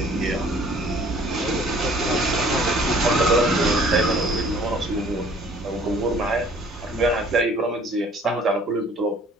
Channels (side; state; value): both; normal; correlation 0.55